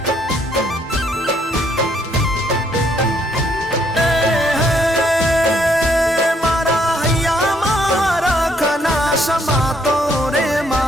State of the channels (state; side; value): normal; both; correlation 0.69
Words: મારા હૈયા મારા ખના સમાતો રે